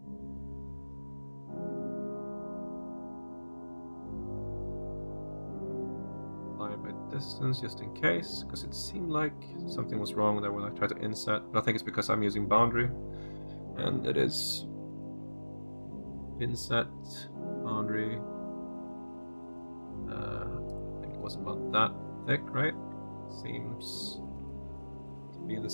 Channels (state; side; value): inverted; both; correlation -1.00